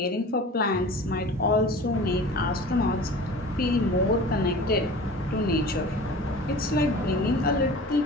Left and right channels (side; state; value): both; normal; correlation 0.39